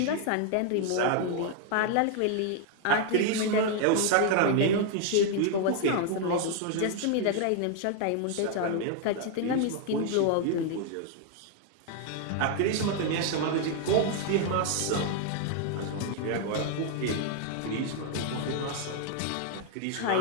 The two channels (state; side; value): different; both; correlation 0.00